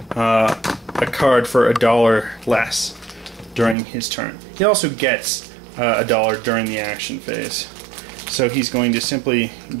a card for $1 less during his turn. He also gets $1 during the action phase. So he's going to simply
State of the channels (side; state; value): left; drops out; at 3.8 s